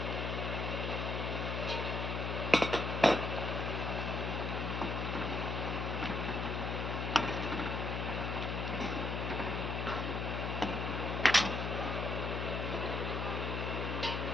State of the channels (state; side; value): noise; left; hum, 1 dB below the sound